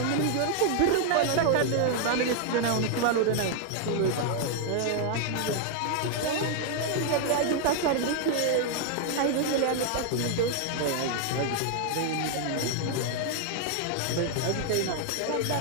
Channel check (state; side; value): different; both; correlation 0.00